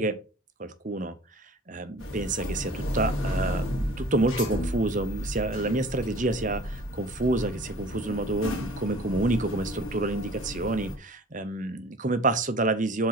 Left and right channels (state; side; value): normal; both; correlation 0.46